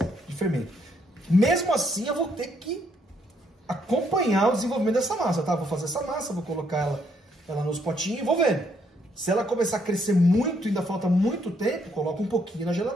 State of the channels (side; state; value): both; normal; correlation 0.72